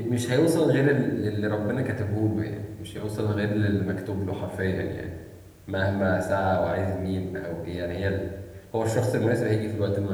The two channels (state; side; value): identical; both; correlation 1.00